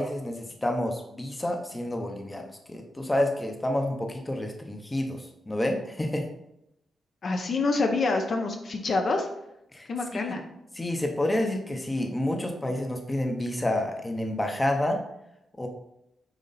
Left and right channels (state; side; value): normal; both; correlation 0.89